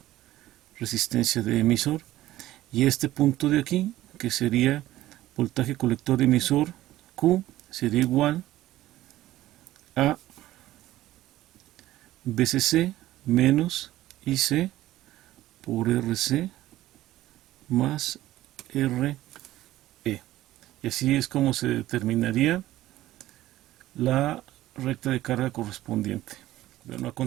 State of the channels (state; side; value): quieter; left; 15.2 dB